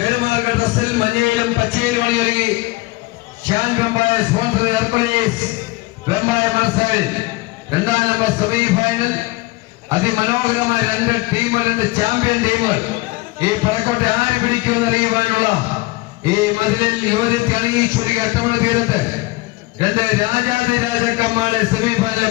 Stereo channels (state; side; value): quieter; right; 21.6 dB